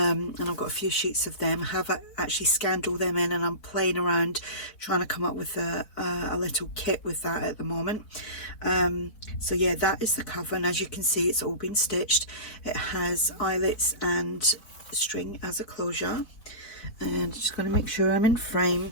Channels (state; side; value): late; right; 4.3 ms